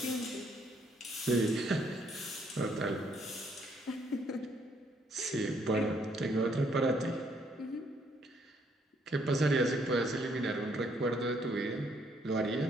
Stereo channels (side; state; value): both; normal; correlation 0.69